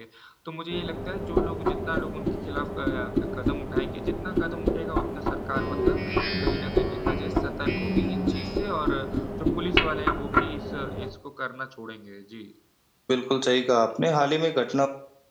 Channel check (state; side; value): identical; both; correlation 1.00